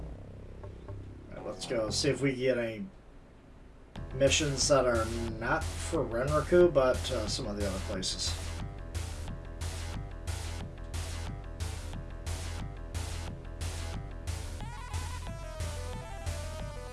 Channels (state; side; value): identical; both; correlation 1.00